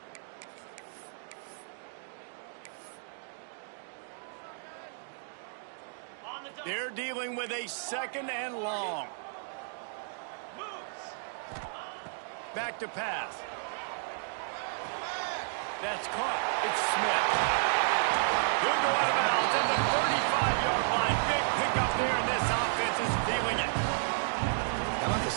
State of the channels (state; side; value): silent; left; digital silence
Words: They're dealing with a 2nd and long. Back to pass. That's caught. It's Smith. He'll go out of bounds at the 35-yard line. Big pickup there, and this offense is feeling it. How about